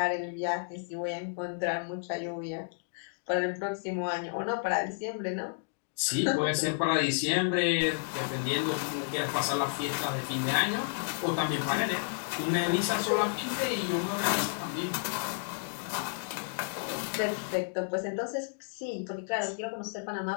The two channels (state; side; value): silent; right; digital silence